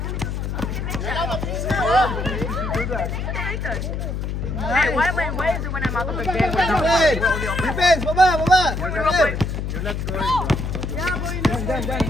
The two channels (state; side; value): noise; left; hum, 3 dB below the sound